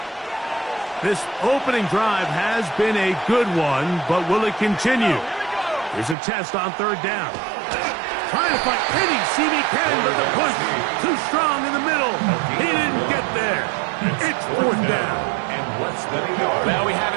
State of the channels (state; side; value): drops out; left; at 6.2 s